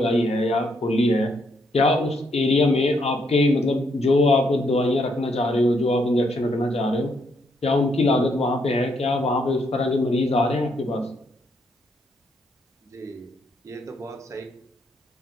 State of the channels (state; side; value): normal; both; correlation 0.74